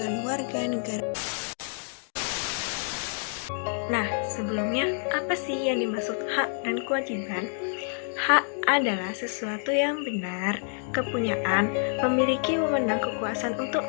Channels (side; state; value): right; silent; digital silence